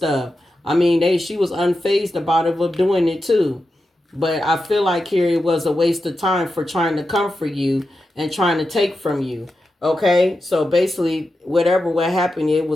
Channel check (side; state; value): both; normal; correlation 0.89